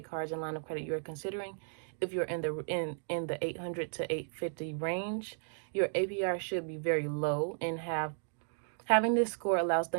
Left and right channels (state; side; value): silent; left; digital silence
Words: cards and line of credit you are considering. If you're in the 800 to 850 range, your APR should be very low, and having this score allows